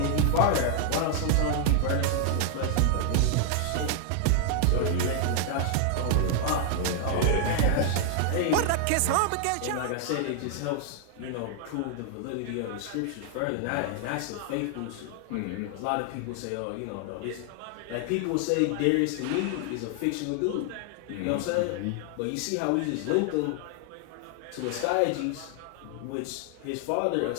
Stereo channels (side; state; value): both; different; correlation 0.00